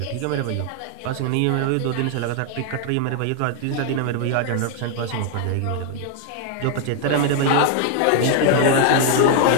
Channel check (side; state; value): both; different; correlation 0.00